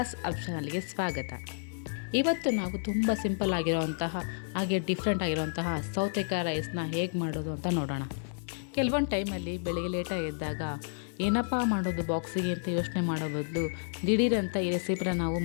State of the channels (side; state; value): right; silent; 56 dB below the other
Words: ಆಪ್ಷನಲ್ಗೆ ಸ್ವಾಗತ. ಇವತ್ತು ನಾವು ತುಂಬ ಸಿಂಪಲ್ ಆಗಿರೋವಂತಹ ಹಾಗೆ ಡಿಫ್ರೆಂಟ್ ಆಗಿರೋವಂತಹ ಸೌತೆಕಾಯಿ ರೈಸ್ನ ಹೇಗೆ ಮಾಡೋದು ಅಂತ ನೋಡೋಣ. ಕೆಲವೊಂದು ಟೈಮಲ್ಲಿ ಬೆಳಿಗ್ಗೆ ಲೇಟಾಗಿ ಎದ್ದಾಗ ಏನಪ್ಪ ಮಾಡೋದು ಬಾಕ್ಸಿಗೆ ಅಂತ ಯೋಚನೆ ಮಾಡೋ ಬದಲು ದಿಢೀರಂತ ಈ ರೆಸಿಪಿನ ನಾವು